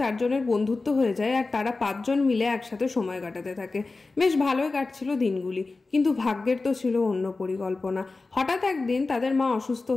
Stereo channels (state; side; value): quieter; right; 3.6 dB